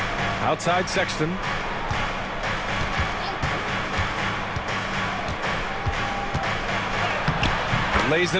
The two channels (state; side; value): identical; both; correlation 1.00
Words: Outside Sexton. Lays